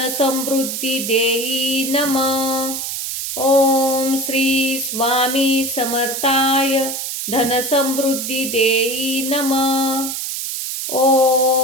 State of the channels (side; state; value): right; noise; hiss, 4 dB below the sound